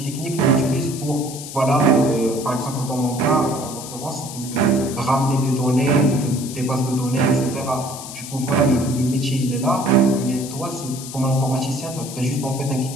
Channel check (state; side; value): noise; left; hiss, 11 dB below the sound